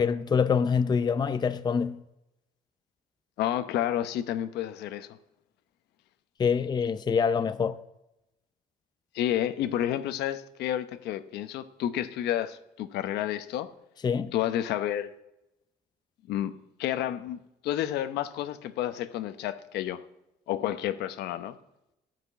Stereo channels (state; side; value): quieter; right; 8.1 dB